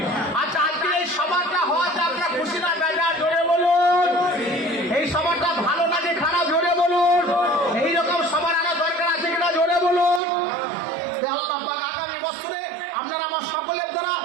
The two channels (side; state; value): left; drops out; at 10.2 s